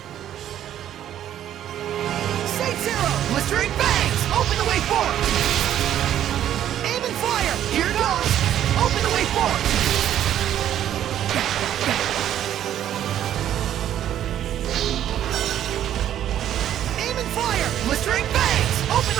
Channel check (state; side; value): quieter; left; 11.1 dB